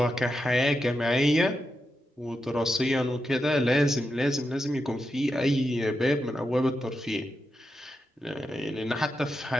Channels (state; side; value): normal; both; correlation 0.87